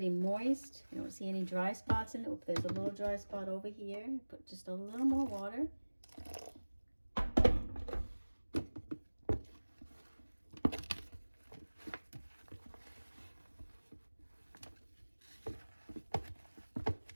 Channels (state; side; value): inverted; both; correlation -1.00